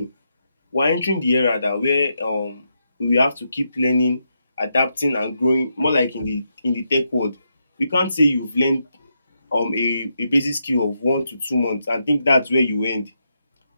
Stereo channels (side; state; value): both; inverted; correlation -0.82